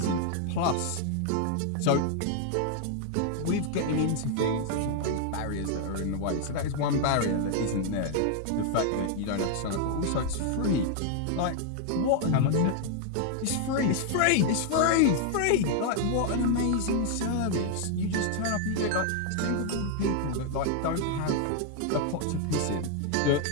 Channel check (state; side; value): different; both; correlation 0.00